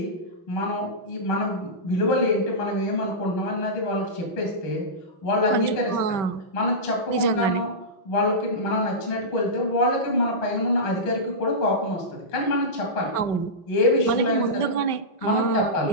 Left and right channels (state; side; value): late; right; 5.3 ms